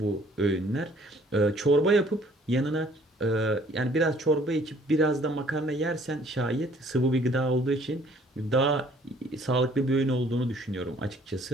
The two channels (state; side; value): normal; both; correlation 0.58